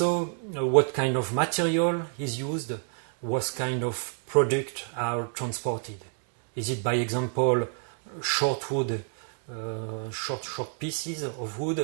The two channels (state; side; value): silent; left; 59 dB below the other